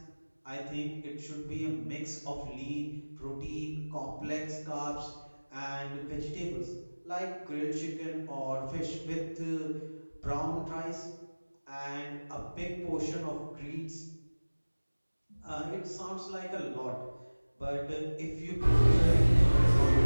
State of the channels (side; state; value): both; inverted; correlation -1.00